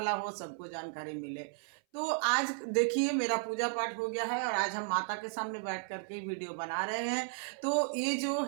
हो, सबको जानकारी मिले। तो आज देखिए, मेरा पूजा पाठ हो गया है और आज हम माता के सामने बैठ करके वीडियो बना रहे हैं। तो ये जो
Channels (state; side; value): silent; left; 55 dB below the other